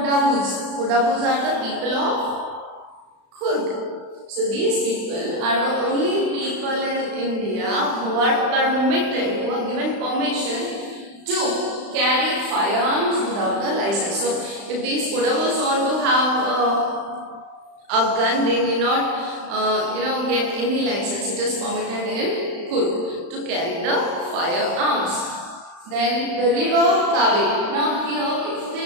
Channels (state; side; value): late; left; 35 ms